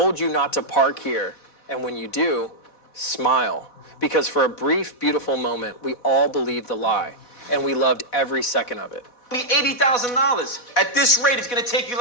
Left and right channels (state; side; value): late; right; 4.1 ms